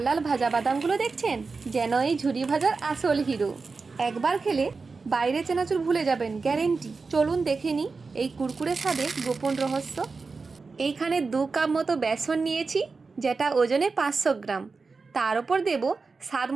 লাল ভাজা বাদামগুলো দেখছেন, যেন এই ঝুরি ভাজার আসল হিরো। একবার খেলে বাইরে চেনাচুর ভুলে যাবেন, গ্যারেন্টি। চলুন দেখে নিই এই কুরকুরে স্বাদের গোপন রহস্য। এইখানে 2 কাপ মতো বেসন নিয়েছি, যেটা ওজনে 500 গ্রাম। তার উপর দেব স্বাদ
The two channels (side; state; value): left; quieter; 4.4 dB